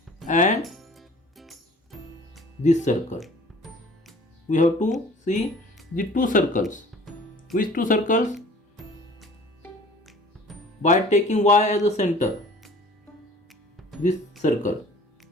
and this circle. We have to see the two circles. Which two circles? By taking y as a center, this circle.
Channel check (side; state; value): both; normal; correlation 0.48